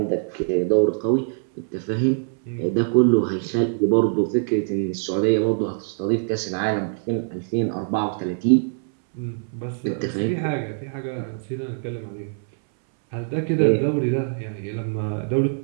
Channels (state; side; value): silent; left; 63 dB below the other